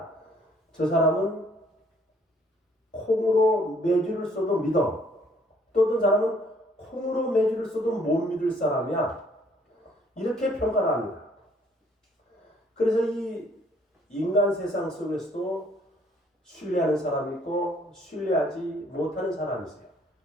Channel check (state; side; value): normal; both; correlation 0.63